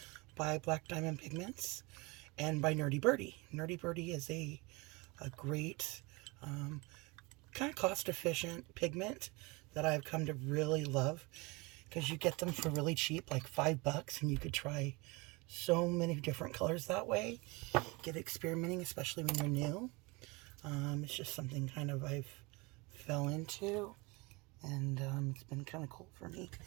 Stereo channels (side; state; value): left; quieter; 26.0 dB